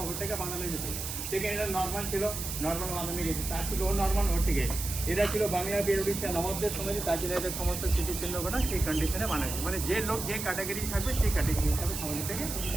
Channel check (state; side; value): noise; right; hiss, 5 dB below the sound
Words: বানানো যেত। সেখানে এটা নর্মাল ছিল, নর্মাল বানানো গেছে, তার ছিল ও নর্মাল, ওর থেকে এরা ছিল বাংলা বীর উড়িষ্যা নবাবদের সময় তার জন্য এদের সমস্ত স্মৃতিচিহ্নগুলো সেই কন্ডিশনে বানানো মানে যে লোক যে ক্যাটাগরি থাকবে সেই ক্যাটাগরি হিসাবে সমাজ থেকে